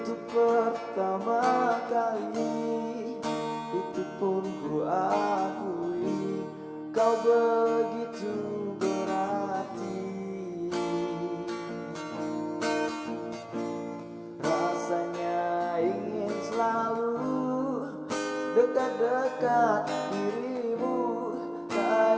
pertama kali itu pun ku akui, kau begitu berarti. Rasanya ingin selalu dekat-dekat dirimu,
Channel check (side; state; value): both; identical; correlation 1.00